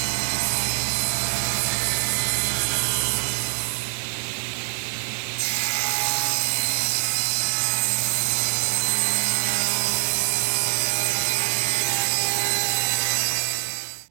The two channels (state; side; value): silent; left; digital silence